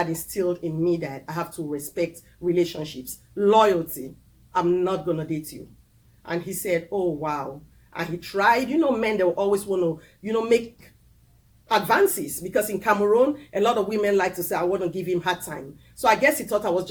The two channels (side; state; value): both; identical; correlation 1.00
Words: instilled in me that I have to respect relationships, loyalty. I'm not going to date you. And he said, oh, wow. And he tried, you know, men, they will always want to, you know, make advances, because in Cameroon, a lot of women like to say, I want to give him hard time. So I guess he thought I was